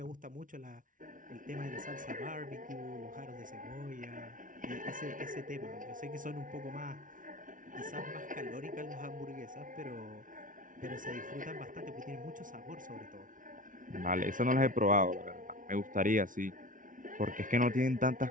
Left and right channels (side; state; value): left; late; 0.38 ms